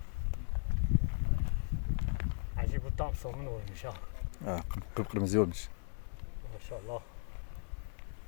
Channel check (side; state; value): right; silent; 53 dB below the other